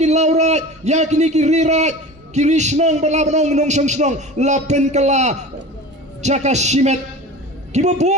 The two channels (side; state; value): both; normal; correlation 0.35